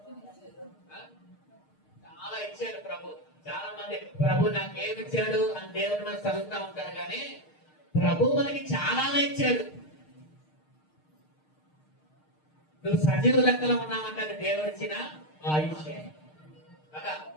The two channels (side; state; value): right; late; 6.5 ms